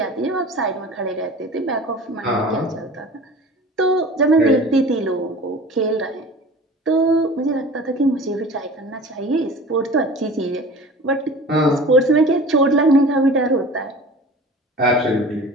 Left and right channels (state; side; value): normal; both; correlation 0.40